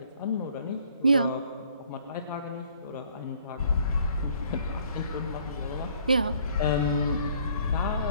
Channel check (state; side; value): inverted; both; correlation -0.60